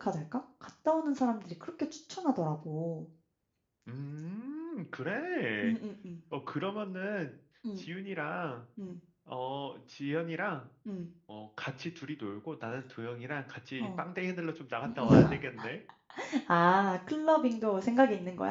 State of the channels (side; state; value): both; identical; correlation 1.00